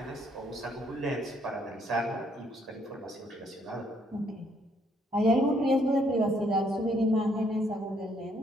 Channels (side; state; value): both; normal; correlation 0.69